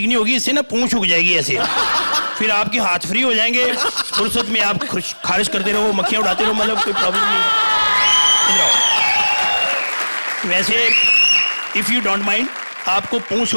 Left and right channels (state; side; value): inverted; both; correlation -1.00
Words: नहीं होगी, इससे ना पूंछ उग जाएगी ऐसे। फिर आपके हाथ फ्री हो जाएंगे, फुर्सत में आप खारिश करते रहो, मक्खियां उड़ाते रहो, मतलब कोई प्रॉब्लम नहीं। वैसे इफ यू डोंट माइंड, आपको पूंछ